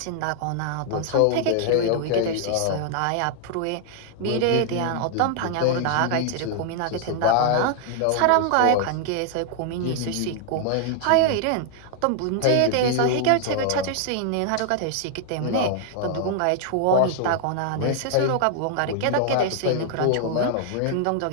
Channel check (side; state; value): both; different; correlation 0.00